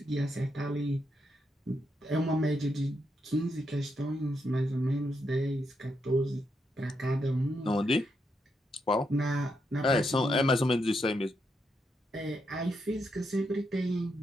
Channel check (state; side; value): normal; both; correlation 0.81